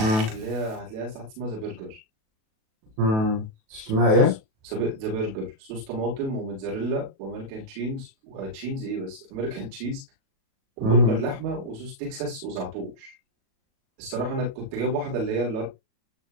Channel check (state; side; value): late; left; 37 ms